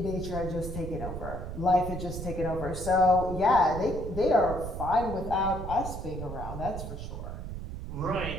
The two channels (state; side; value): noise; right; rumble, 7 dB below the sound